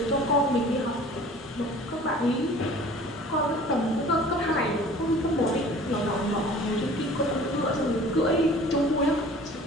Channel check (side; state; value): both; normal; correlation 0.47